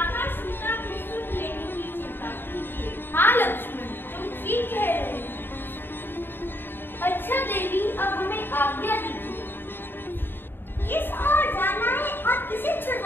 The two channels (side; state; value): right; late; 0.099 ms